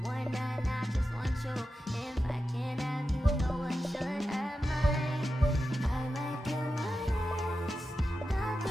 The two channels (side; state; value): both; normal; correlation 0.91